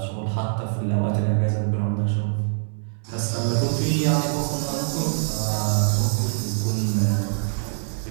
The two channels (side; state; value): left; silent; 63 dB below the other